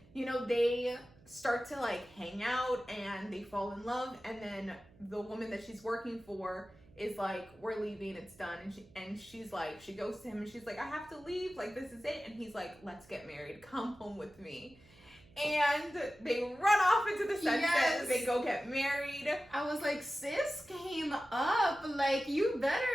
you know, they start to like hang out and they fall in love, and then the woman that she's working for is like, we're leaving, it's done. And she's like, she goes to him and she's like, I have to leave, like this is it. And he's like, let's get married, come home with me. And they run off into the sunset. Yes. They go get married. I was like, sis came up. Like, you better,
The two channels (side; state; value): right; noise; hum, 26 dB below the sound